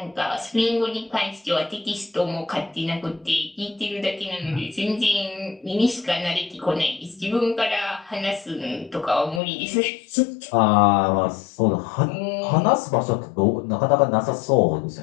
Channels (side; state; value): right; drops out; at 9.4 s